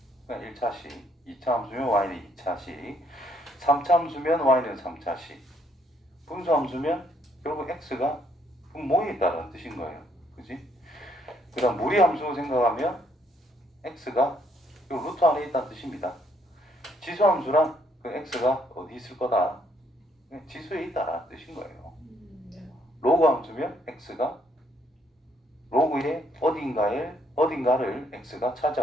그냥 1차식, 2차 함수면 y는 2차식, 3차 함수면 y는 3차식, 분수 함수면 결국 x가 분모에 있다는 뜻인 거예요. 그지? 그 다음 무리 함수 생각하면 x가 이 루트 안에 있다는 뜻입니다. 지수 함수랑 그 x가 어디 있을 거다? 지수에 있다라는 뜻인 거예요. 로그 함수면 x가 로그의 어딘가를 x가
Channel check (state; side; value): normal; both; correlation 0.69